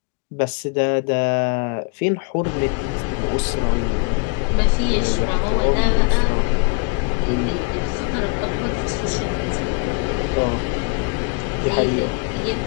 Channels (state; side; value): quieter; right; 30.3 dB